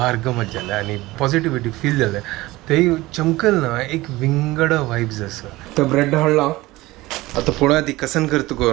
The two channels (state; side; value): quieter; left; 19.2 dB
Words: गमत जालें आणि पॉझिटिव्हिटी फील जालें. ते चमकल ना एक विंगड वायब्स आसा. तर ब्रेड हाडला आता पुढे ती कसन करता